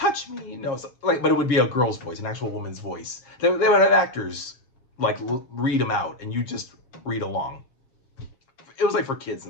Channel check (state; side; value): late; right; 7.4 ms